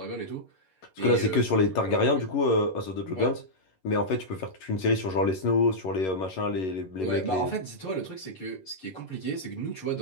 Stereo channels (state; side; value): late; right; 11 ms